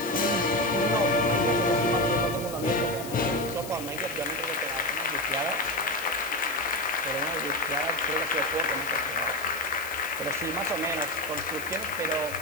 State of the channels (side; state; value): left; noise; hiss, 12 dB below the sound